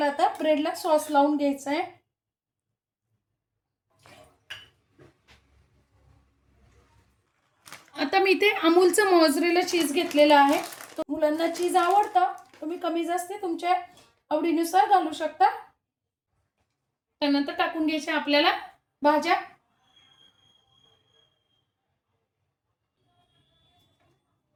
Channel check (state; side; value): identical; both; correlation 1.00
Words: आता ब्रेडला सॉस लावून घ्यायचा आहे. आता मी इथे अमूलचं मोझरेला चीज घेतलेलं आहे. मुलांना चीज आवडतं, तुम्ही कमी जास्त तुमच्या आवडीनुसार घालू शकता. त्यानंतर टाकून घ्यायच्या आपल्याला भाज्या.